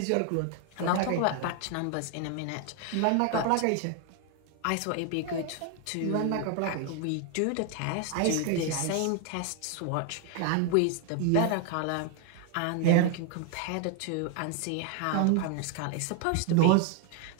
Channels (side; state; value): both; different; correlation 0.00